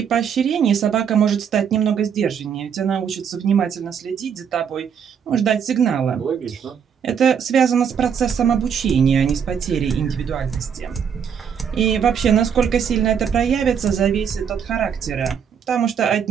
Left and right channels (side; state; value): left; quieter; 7.5 dB